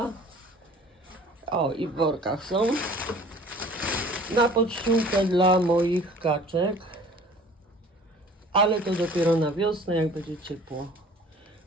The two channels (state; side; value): normal; both; correlation 0.49